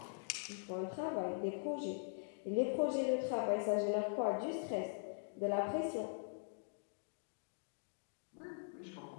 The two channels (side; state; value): right; silent; digital silence